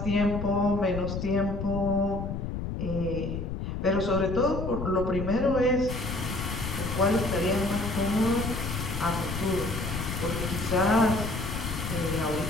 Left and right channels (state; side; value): noise; left; rumble, 4 dB below the sound